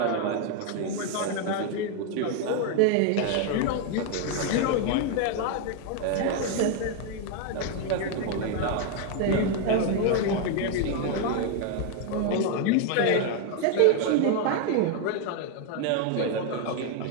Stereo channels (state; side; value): different; both; correlation 0.01